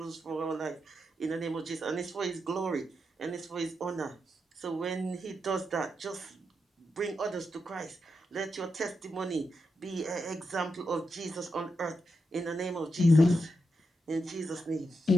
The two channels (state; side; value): normal; both; correlation 0.85